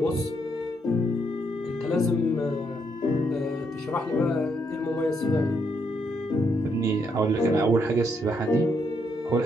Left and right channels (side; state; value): both; normal; correlation 0.76